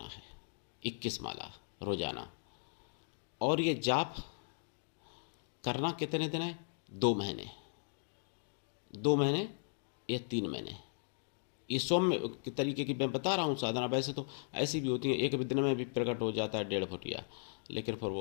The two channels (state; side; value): silent; right; digital silence